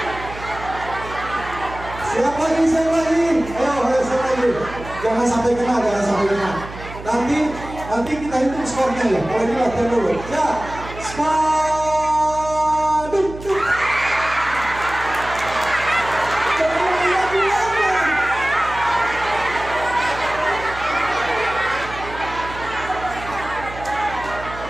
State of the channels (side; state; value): right; noise; hum, 13 dB below the sound